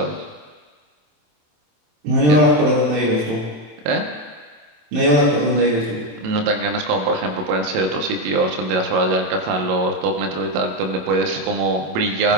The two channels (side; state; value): left; late; 27 ms